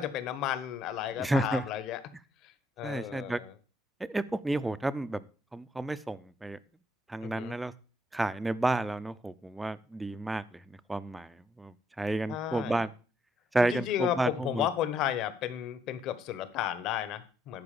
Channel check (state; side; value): normal; both; correlation 0.72